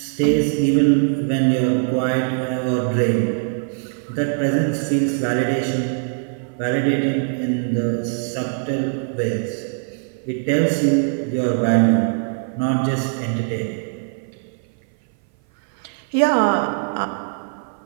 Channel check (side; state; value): left; silent; 58 dB below the other